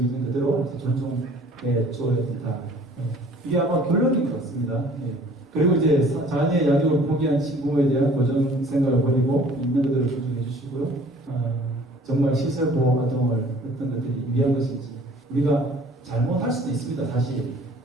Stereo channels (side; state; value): both; normal; correlation 0.52